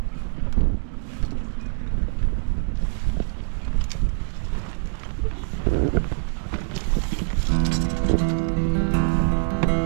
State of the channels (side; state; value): left; silent; digital silence